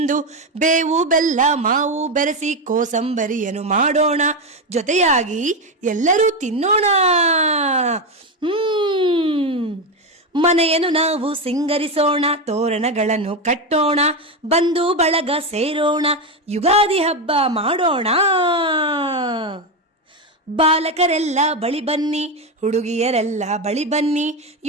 ಬೇವು ಬೆಲ್ಲ ಮಾವು ಬೆರೆಸಿ ಕೋಸಂಬರಿಯನ್ನು ಮಾಡೋಣ, ಜೊತೆಯಾಗಿ ಎಲ್ಲರೂ ತಿನ್ನೋಣ. ಮನೆಯನ್ನು ನಾವು ಸಿಂಗರಿಸೋಣ, ತೋರಣಗಳನ್ನು ಕಟ್ಟೋಣ, ಬಂಧು ಬಳಗ ಸೇರೋಣ, ಯುಗಾದಿ ಹಬ್ಬ ಮಾಡೋಣ. ಬಾಲಕರೆಲ್ಲ ಬಳಿ ಬನ್ನಿ, ಹುಡುಗಿಯರೆಲ್ಲ ಬಳಿ ಬನ್ನಿ,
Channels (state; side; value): normal; both; correlation 0.11